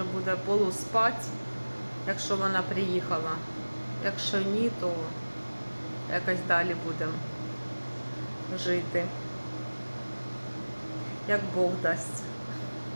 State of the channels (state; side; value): inverted; both; correlation -1.00